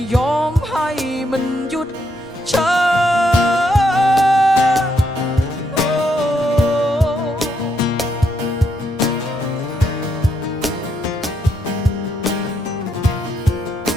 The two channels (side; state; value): both; normal; correlation 0.77